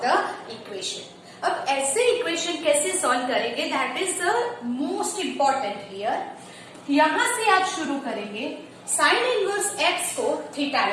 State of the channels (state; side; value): identical; both; correlation 1.00